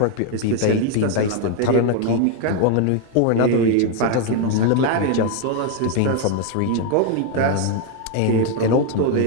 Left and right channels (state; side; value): different; both; correlation 0.01